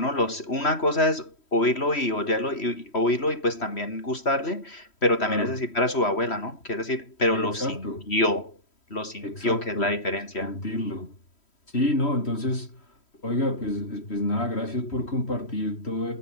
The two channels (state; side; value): late; right; 3.1 ms